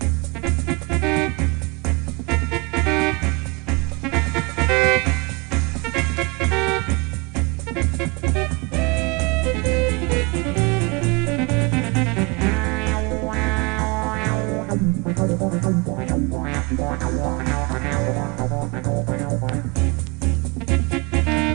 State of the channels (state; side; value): quieter; left; 29.0 dB